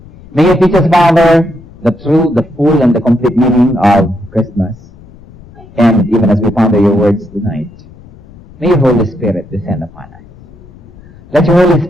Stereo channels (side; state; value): left; noise; rumble, 22 dB below the sound